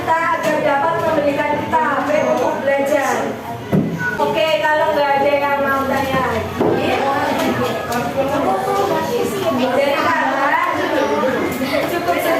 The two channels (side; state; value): both; identical; correlation 1.00